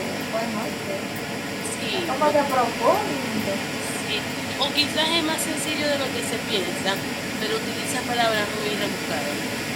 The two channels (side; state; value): both; identical; correlation 1.00